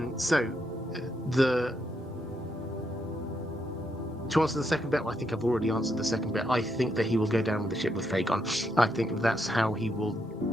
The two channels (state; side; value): normal; both; correlation 0.79